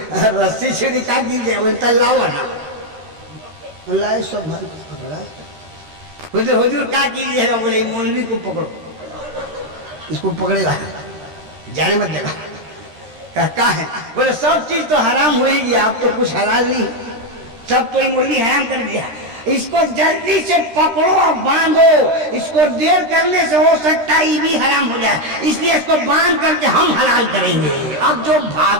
रस्सी छुरी क्या कीजिए, बोले तन लाओ ना। अल्लाह सब बोले हुजूर क्या कीजिएगा, बोले मौलवी को पकड़ो, इसको पकड़ेगा जाने मत देगा। क्या है, बोले सब चीज तो हराम होगी, आप तो कुछ हलाल नहीं, सब तो मौलवी हराम कर दिया, इसको जल्दी से पकड़ो और बांधो, इसको देर करने से हो सकता है ये भी हराम हो जाए, इसलिए इसको बांध करके हम हलाल करेंगे। अब जो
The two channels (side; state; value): left; late; 13 ms